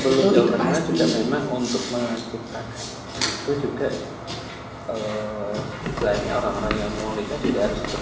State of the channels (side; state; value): both; identical; correlation 1.00